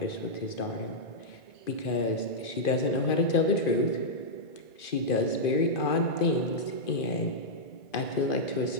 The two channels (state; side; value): late; right; 2.5 ms